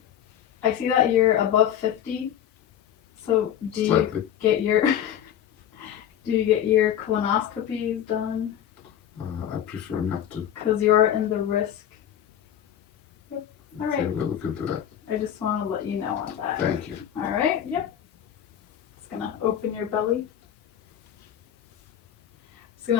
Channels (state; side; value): quieter; right; 10.2 dB